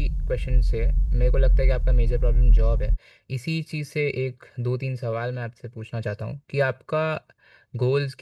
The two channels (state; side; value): identical; both; correlation 1.00